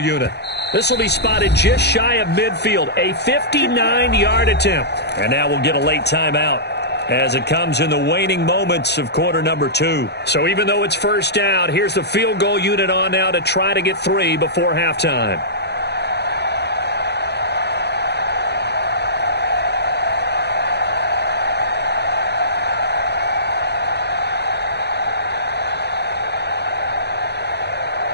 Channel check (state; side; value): late; right; 0.49 ms